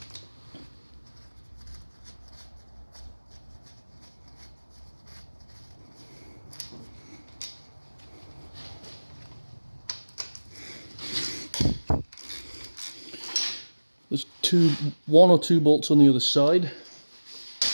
There's one or two bolts on the other side.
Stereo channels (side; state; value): both; inverted; correlation -1.00